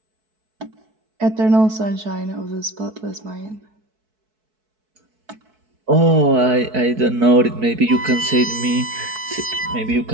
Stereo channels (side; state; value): left; late; 4.6 ms